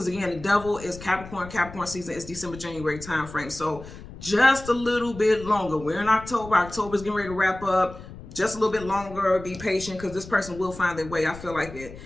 again, the devil is Capricorn. Capricorn season is December, January time frame. So just a little bit longer. We're in October. October's getting ready to wrap up. Just a little bit longer. Be patient, because this person will find their way. I feel like it.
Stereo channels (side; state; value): left; noise; rumble, 15 dB below the sound